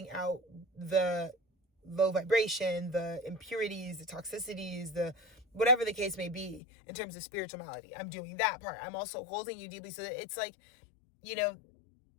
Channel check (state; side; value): drops out; right; at 6.6 s